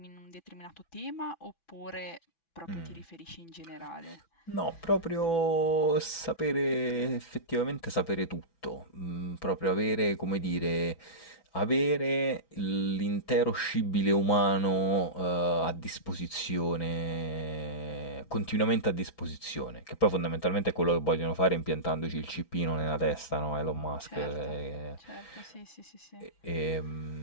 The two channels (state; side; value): late; right; 6.0 ms